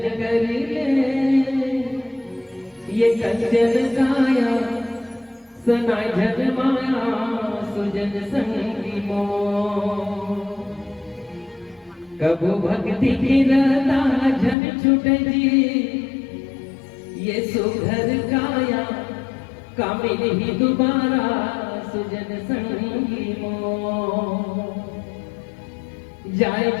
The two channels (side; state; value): right; drops out; at 14.6 s